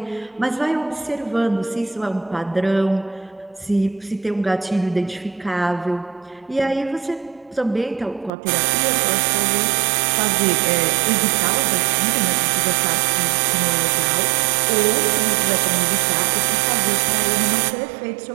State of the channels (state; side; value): drops out; left; at 8.3 s